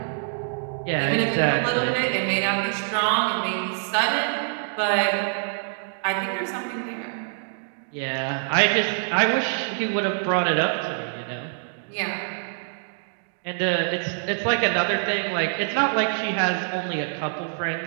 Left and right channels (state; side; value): silent; left; digital silence